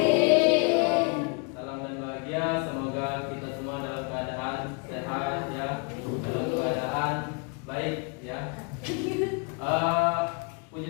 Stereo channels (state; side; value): quieter; right; 35.5 dB